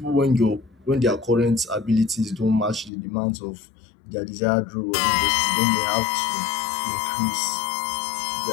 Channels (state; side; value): drops out; right; at 2.9 s